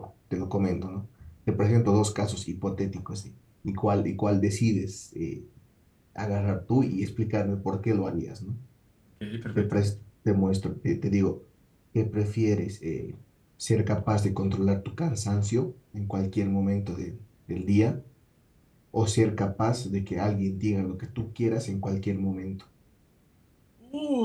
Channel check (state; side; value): identical; both; correlation 1.00